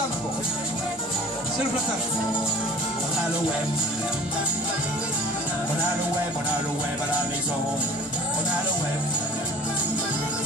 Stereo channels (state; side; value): normal; both; correlation 0.46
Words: encore. C'est le platane. On a le web. On a le web, on a le web à la maison. On a le web.